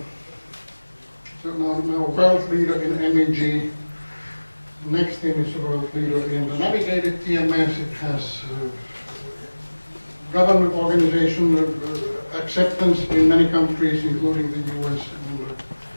now a world leader in MEG. Next thing is a world leader in the navigated TMS. It has government organization acceptance in many countries, including the US and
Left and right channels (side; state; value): both; inverted; correlation -1.00